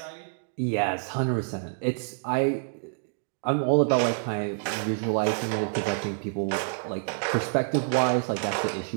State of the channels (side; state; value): left; silent; digital silence